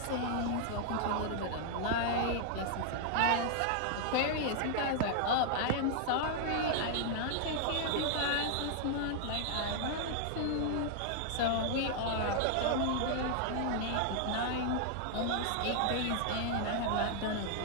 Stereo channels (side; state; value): both; different; correlation 0.00